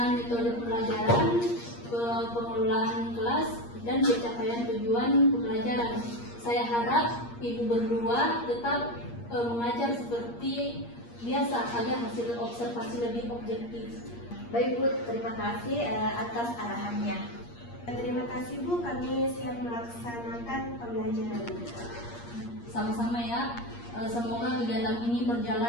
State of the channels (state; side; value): late; right; 8.5 ms